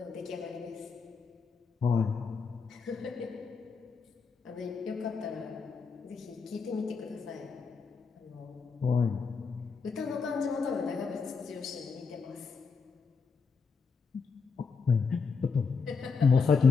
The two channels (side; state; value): right; quieter; 5.2 dB